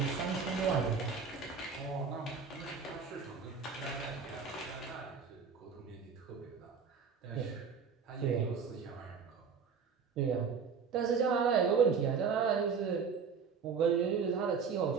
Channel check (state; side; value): quieter; left; 5.8 dB